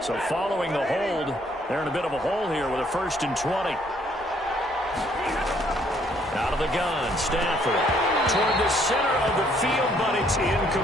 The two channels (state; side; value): normal; both; correlation 0.66